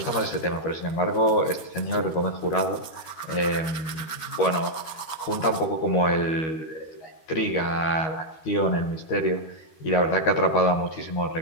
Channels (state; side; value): late; right; 13 ms